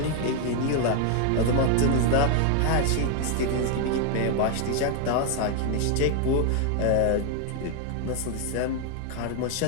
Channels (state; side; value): different; both; correlation 0.00